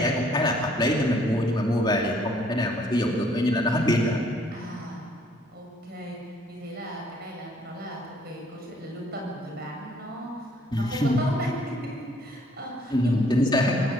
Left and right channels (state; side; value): normal; both; correlation 0.62